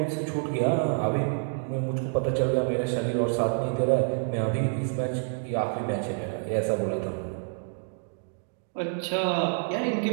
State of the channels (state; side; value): silent; left; 57 dB below the other